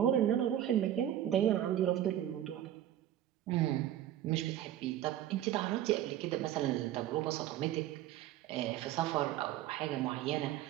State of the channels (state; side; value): quieter; left; 12.0 dB